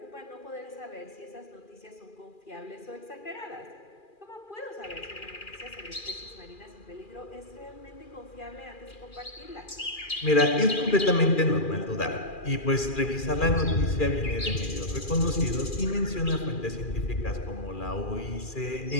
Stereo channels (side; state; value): right; late; 2.4 ms